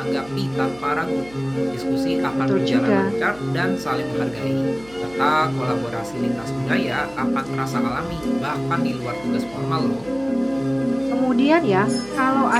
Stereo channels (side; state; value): right; noise; hum, 23 dB below the sound